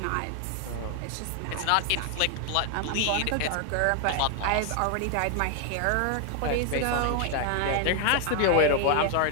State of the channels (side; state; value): both; different; correlation 0.00